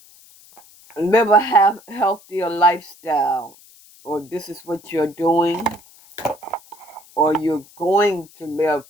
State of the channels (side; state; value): left; noise; hiss, 25 dB below the sound